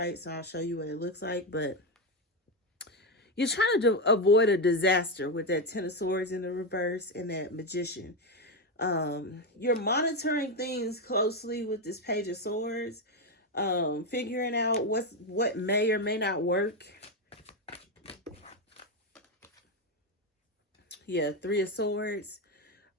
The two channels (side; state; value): both; normal; correlation 0.09